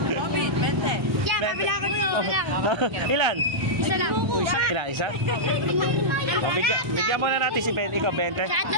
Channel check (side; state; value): left; late; 1.3 ms